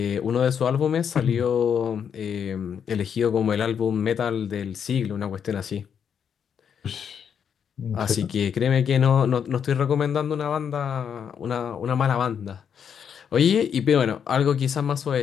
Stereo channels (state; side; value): quieter; right; 7.7 dB